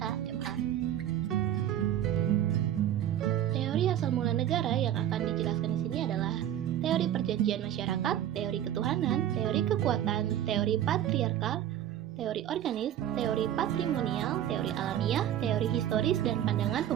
Teori asal mula negara yang akan dijelaskan di sini adalah teori perjanjian masyarakat, teori ketuhanan, teori kekuatan, teori patriarkal, teori organis, teori patrimonial, teori alamiah, teori historis, dan pandangan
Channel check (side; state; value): left; quieter; 11.2 dB